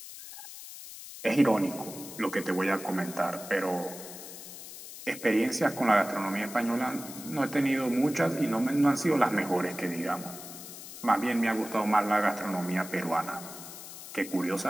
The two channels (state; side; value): noise; left; hiss, 13 dB below the sound